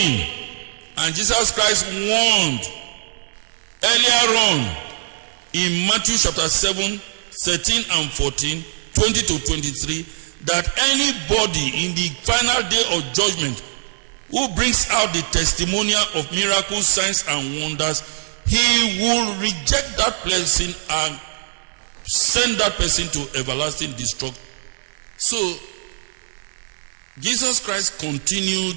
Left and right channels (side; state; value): left; silent; digital silence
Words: and Jesus Christ warned earlier on in Matthew chapter 7 13 and 14, 20 to 23, that anybody in the final day of judgment who brings out the testimonial of miracles, signs and wonders, he will reject that person and send that person to everlasting destruction. So Jesus Christ